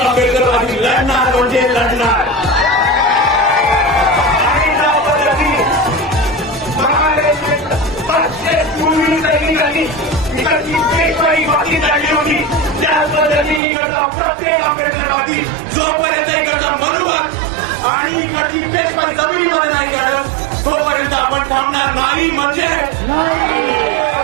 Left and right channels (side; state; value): left; drops out; at 13.6 s